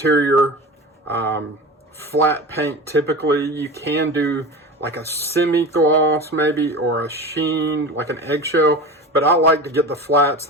flat paint. Typically you can do like a semi-gloss maybe, or a sheen, like an eggshell, but I like to get the flats.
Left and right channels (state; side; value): normal; both; correlation 0.31